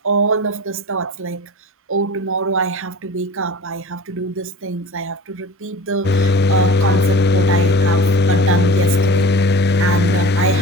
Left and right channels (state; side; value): normal; both; correlation 0.38